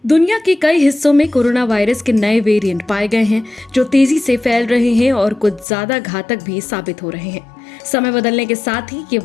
दुनिया के कई हिस्सों में कोरोना वायरस के नए वेरिएंट पाए गए हैं जो तेजी से फैल रहे हैं और कुछ ज्यादा घातक भी साबित हो रहे हैं। समय बदलने के साथ ही ये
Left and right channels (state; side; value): drops out; right; at 5.7 s